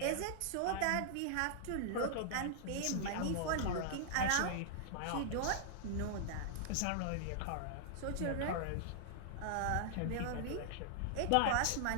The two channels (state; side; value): different; both; correlation -0.01